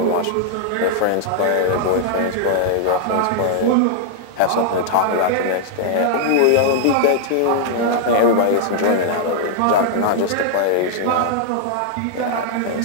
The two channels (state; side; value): different; both; correlation -0.01